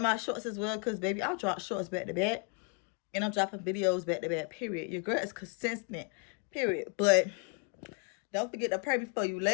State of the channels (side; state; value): right; quieter; 37.2 dB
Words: my shorts as well. Because baby, I'll drop shorts back to back. And I'm dropping videos back to back, period. Your girl is consistent, period. But don't forget to pray before you